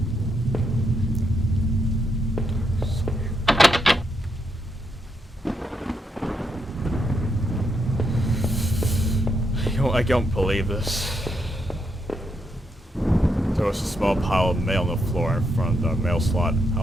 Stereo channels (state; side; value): normal; both; correlation 0.80